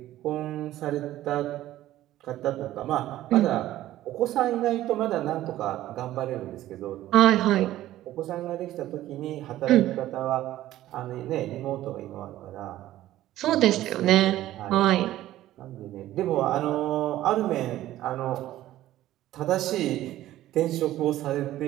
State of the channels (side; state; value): left; quieter; 14.3 dB